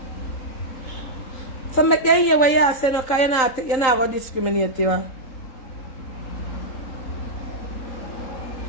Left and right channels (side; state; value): right; late; 3.8 ms